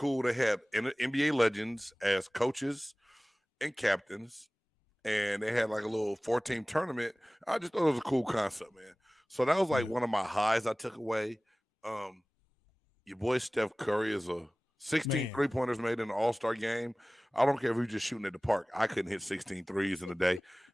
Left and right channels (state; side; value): normal; both; correlation 0.98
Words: to have NBA legends as coaches and captains, and they had like a little 4-team tournament. I just thought it was a cool concept, man. So that was like one of my highs I took away. Your boy Steph Curry is a 16 3-pointers made in an all-star game. I don't care if you're just shooting at the park. I couldn't hit 16 threes in a day.